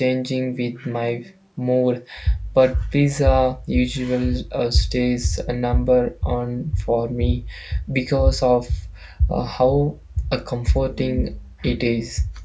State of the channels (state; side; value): identical; both; correlation 1.00